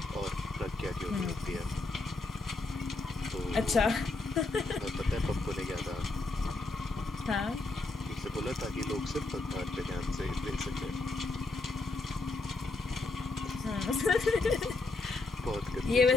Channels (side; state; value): right; quieter; 3.3 dB